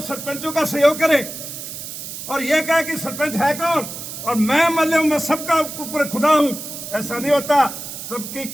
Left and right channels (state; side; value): noise; right; hiss, 9 dB below the sound